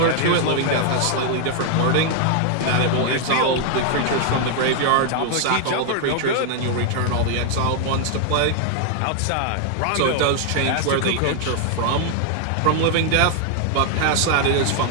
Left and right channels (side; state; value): both; different; correlation 0.00